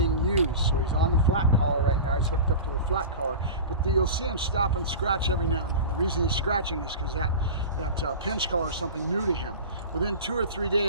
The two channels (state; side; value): inverted; both; correlation -0.31